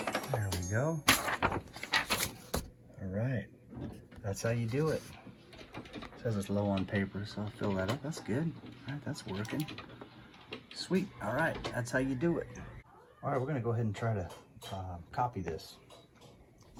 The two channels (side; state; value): both; identical; correlation 1.00